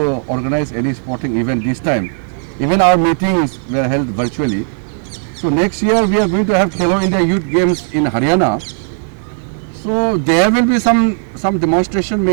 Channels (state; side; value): silent; left; digital silence